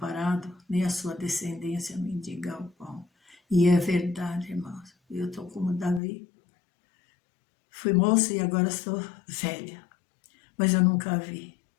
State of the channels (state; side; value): drops out; right; at 6.0 s